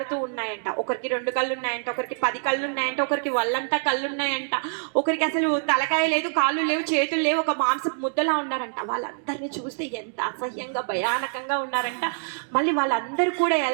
ఉన్నాయంట. ఒకరికి 2 కళ్ళు ఉన్నాయంట, ఒకరికి 10 కళ్ళు ఉన్నాయంట, ఒకరికి వల్లంతా కళ్ళు ఉన్నాయంట, ఒకరికి అసలు తలకాయ లేదు, కాళ్ళు లేవు, చేతులు లేవు, ఒక మాంసపు ముద్దలా ఉన్నారంట. వాళ్ళందరినీ చూస్తే ఎంత అసహ్యంగా భయానకంగా ఉన్నారంట. మళ్ళీ వాళ్ళందరూ కూడా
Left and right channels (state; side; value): silent; left; digital silence